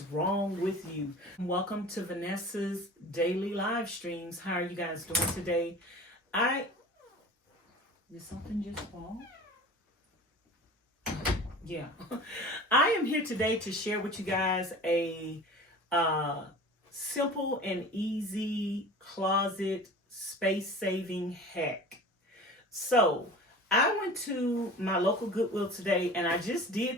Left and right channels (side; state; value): both; normal; correlation 0.39